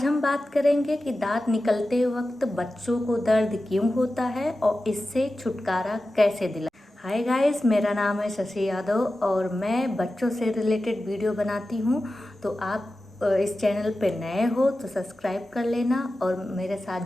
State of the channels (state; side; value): normal; both; correlation 0.94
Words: हम बात करेंगे कि दांत निकलते वक्त बच्चों को दर्द क्यों होता है और इससे छुटकारा कैसे दिला। हाय गाइस, मेरा नाम है शशि यादव और मैं बच्चों से रिलेटेड वीडियो बनाती हूँ। तो आप इस चैनल पे नए हो तो सब्सक्राइब कर लेना और मेरे